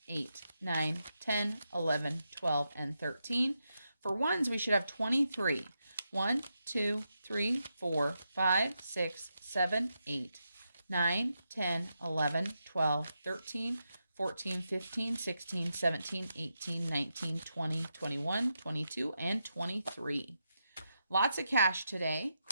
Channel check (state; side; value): inverted; both; correlation -0.85